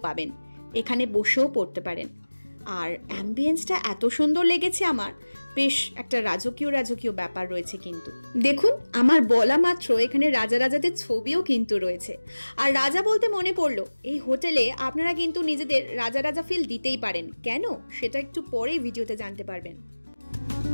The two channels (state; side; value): inverted; both; correlation -1.00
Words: পাবেন, এখানে বসেও পড়তে পারেন। আর অ্যাম্বিয়েন্সটা এত সুন্দর লেগেছে আমার, বেশ একটা রাজকীয় ব্যাপার রয়েছে। কিন্তু দেখুন, আমার বলা মাত্র এখানে রাজাদের ছবিও কিন্তু রয়েছে। আর রাজা বলতে মনে পড়লো, এই হোটেলে আপনারা কিন্তু নিজেদের রাজা ফিল দিতেই পারেন। কেন, সেটা একটু পরেই ভিডিওতে জানতে পারবেন।